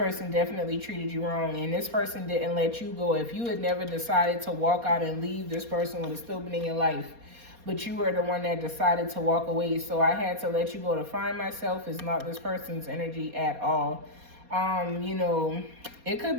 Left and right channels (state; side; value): late; left; 4.2 ms